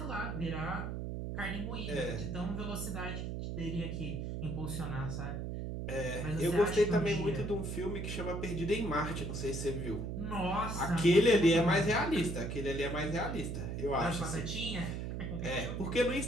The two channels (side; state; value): right; noise; hum, 4 dB below the sound